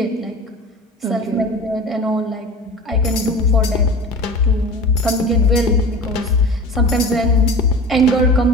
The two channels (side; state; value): both; normal; correlation 0.35